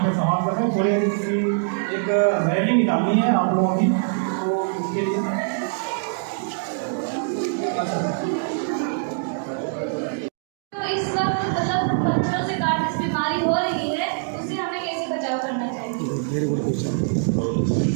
पे समाप्त करते हैं। थोड़ी सी एक रैली निकालनी है आप लोगों की, तो इसके लिए तो इस वक्त मतलब बच्चों से कार्डियस बीमारी हो रही है, उससे हमें कैसे बचाव करना चाहिए?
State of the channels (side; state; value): left; silent; digital silence